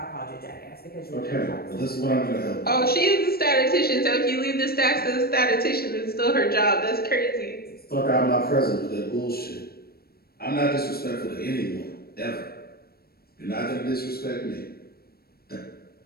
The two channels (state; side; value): late; right; 0.45 ms